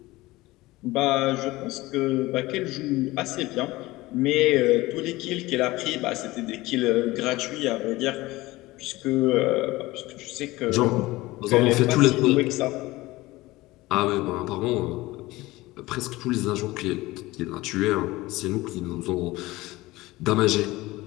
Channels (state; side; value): quieter; right; 19.4 dB